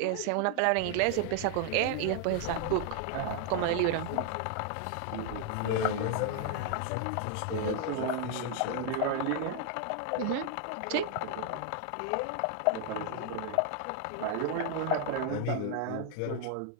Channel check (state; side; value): different; both; correlation 0.00